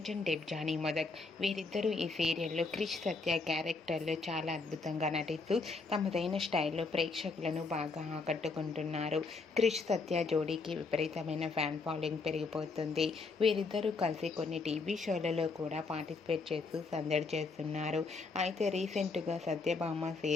Debjani Modak వీరిద్దరూ ఈ సీరియల్లో క్రిష్ సత్య క్యారెక్టర్లో చాలా అద్భుతంగా నటిస్తూ తమదైన స్టైల్లో ప్రేక్షకులను బాగా ఆకట్టుకుంటున్నారు. క్రిష్ సత్య జోడీకి విపరీతమైన ఫ్యాన్ ఫాలోయింగ్ పెరిగిపోతుంది. వీరిద్దరూ కలిసి కొన్ని టీవీ షోలలో కూడా పార్టిసిపేట్ చేస్తూ సందడి చేస్తున్నారు. అయితే రీసెంట్గా Satyabhama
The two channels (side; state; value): right; quieter; 4.1 dB